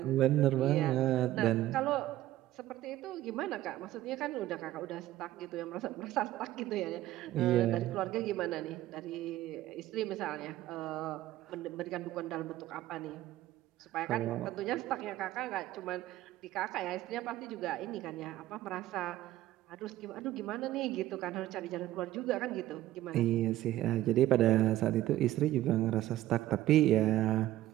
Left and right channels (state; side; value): quieter; left; 14.6 dB